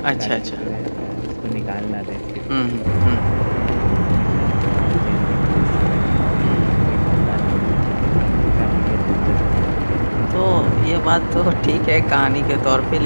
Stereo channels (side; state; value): both; inverted; correlation -1.00